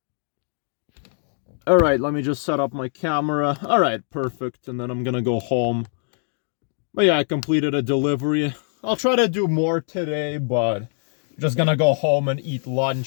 Alright, let me just set up my camera. Alright, perfect. And then I'm gonna go home. But yeah, I completed a delivery. I'll try to do more today, but I'm just gonna go home and eat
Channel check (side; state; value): right; silent; 63 dB below the other